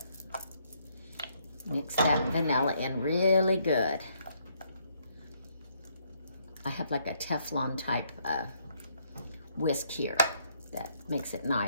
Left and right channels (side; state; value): both; inverted; correlation -0.71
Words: Mix that vanilla in really good. I have like a Teflon type whisk here that makes it